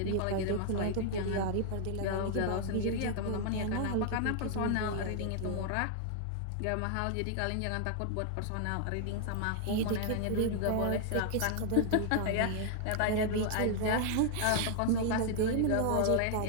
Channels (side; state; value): both; different; correlation 0.00